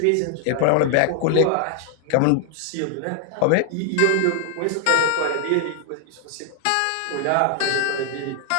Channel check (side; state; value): both; different; correlation 0.00